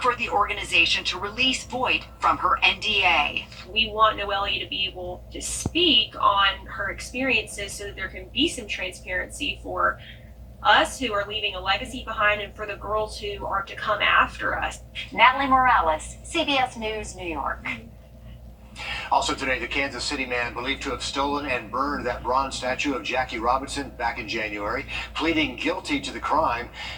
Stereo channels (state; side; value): identical; both; correlation 1.00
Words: the organization to release Voigt from her NDA. We want Noelia to be able to speak on her experiences so that there can be some transparency for us who are leaving a legacy behind and for the girls who are to come after us. Natalie Morales, CBS News, New York. Also today, the Kansas City man believed to have stolen and burned that bronze statue of Jackie Robinson back in January, pleading guilty to the crime.